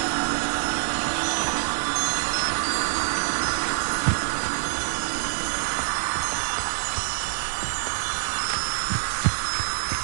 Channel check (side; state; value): left; silent; 57 dB below the other